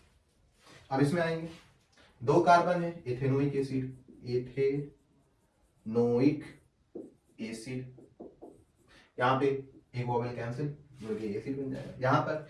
अब इसमें आएंगे 2 कार्बन है, एथेनोइक एसिड, एथेनोइक एसिड, यहाँ पे एक वोवेल कैंसिल, जो कि एसिड बन जाएगा। यहाँ पर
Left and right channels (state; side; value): identical; both; correlation 1.00